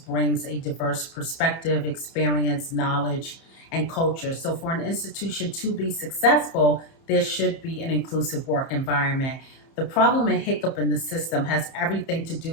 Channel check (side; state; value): right; late; 30 ms